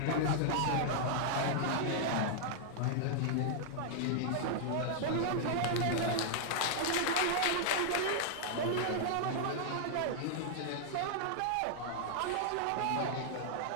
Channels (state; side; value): different; both; correlation -0.01